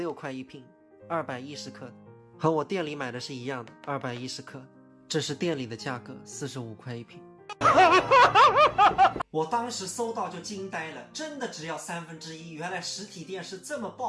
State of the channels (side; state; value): both; identical; correlation 1.00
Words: 块一瓶，210克的，和我店里买的是一样的，210克。这是店里的价格，45块一瓶。我当时搜到就惊呆了，真的只要1/3，原来实体店是这么